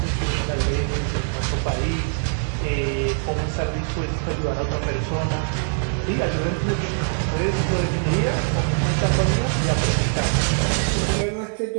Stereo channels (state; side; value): silent; left; 64 dB below the other